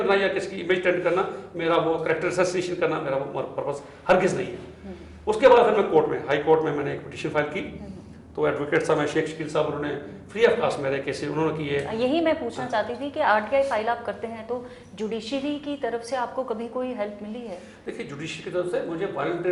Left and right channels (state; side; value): identical; both; correlation 1.00